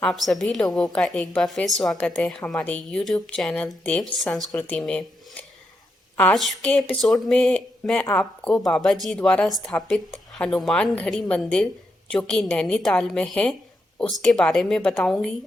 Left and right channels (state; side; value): normal; both; correlation 0.83